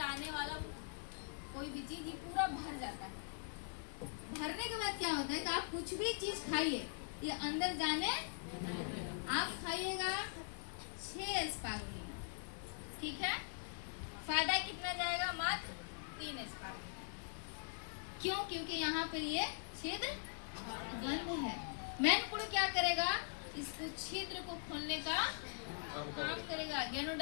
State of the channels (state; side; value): silent; right; digital silence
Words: आने वाला कोई भी चीज ये पूरा भर जाता है। भरने के बाद क्या होता है कि आप कुछ भी चीज खाइए, ये अंदर जाने, आप खाइएगा 6 स्पारुलिना, ठीक है। फायदा कितना जाएगा, मात्र 3 स्पारुलिना। क्यों? क्योंकि यहाँ पे ये छिद्र बंद है। मेन कुड़ क्या करेगा, इसको छिद्र को खोलने का काम करेगा।